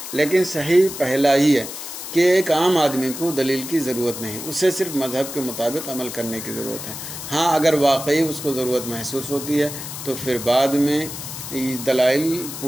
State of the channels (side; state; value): left; noise; hiss, 9 dB below the sound